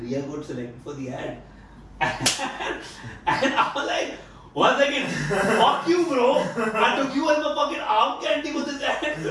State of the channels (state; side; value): identical; both; correlation 1.00